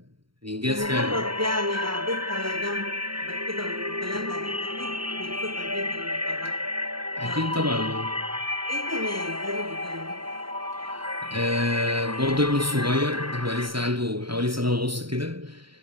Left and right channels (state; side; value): late; left; 0.74 ms